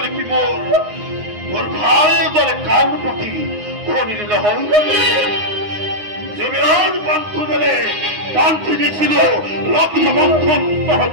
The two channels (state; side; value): late; left; 9.6 ms